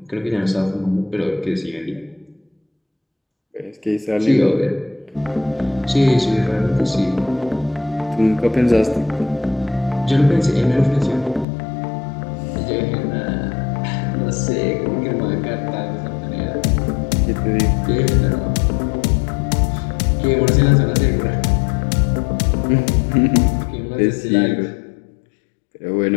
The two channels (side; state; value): right; drops out; at 11.5 s